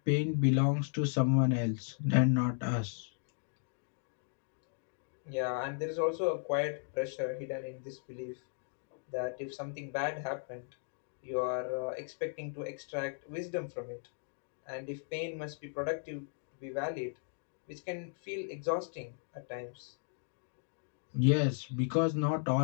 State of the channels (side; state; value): right; silent; digital silence